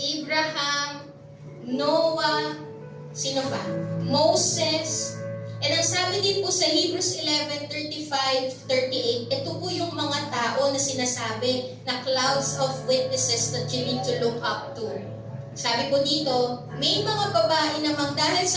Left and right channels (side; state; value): both; identical; correlation 1.00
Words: Abraham, Noah, sino pa? Moses. And ang sabi din po sa Hebrews 11:35-38, ito po yung mga tao na sinasabi na clouds of witnesses that you need to look up to. Sabi po dito, may mga babae namang dahil